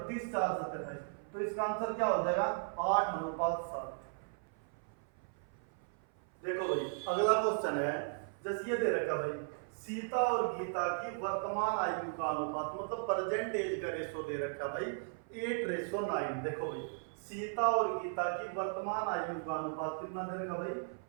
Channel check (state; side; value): silent; left; 53 dB below the other